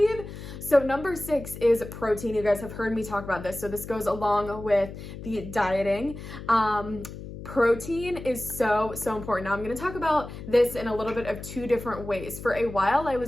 So number 6 is protein. You guys have heard me talk about this. So this goes along with the dieting. Protein is so, so important. Now I'm going to talk about this in a little bit of 2 different ways. For a while, I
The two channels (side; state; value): left; noise; hum, 11 dB below the sound